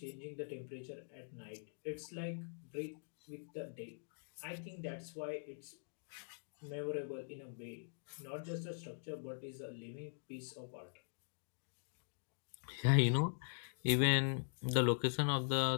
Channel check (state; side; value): silent; right; digital silence